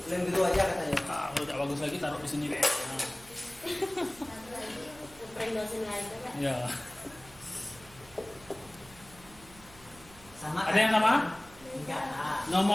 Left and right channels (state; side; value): noise; right; hum, 22 dB below the sound